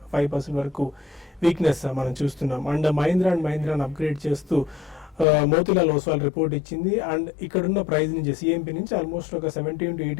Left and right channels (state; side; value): drops out; right; at 5.2 s